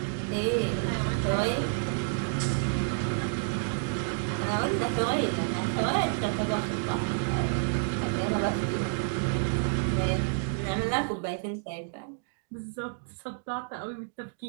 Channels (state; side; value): silent; left; digital silence